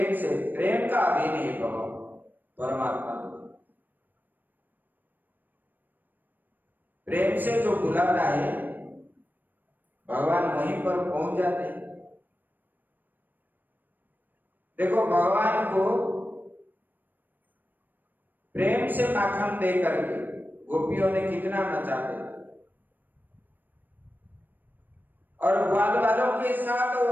से, प्रेम का अधीन है भगवान परमात्मा। प्रेम से जो बुलाता है भगवान वहीं पर पहुंच जाते हैं। देखो भगवान को प्रेम से माखन दे करके गोपियों ने कितना नचाते, और ग्वाल वालों के साथ वो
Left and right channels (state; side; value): late; left; 0.089 ms